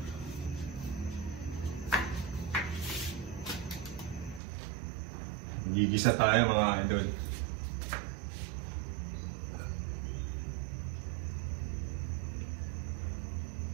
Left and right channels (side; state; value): left; drops out; at 4.4 s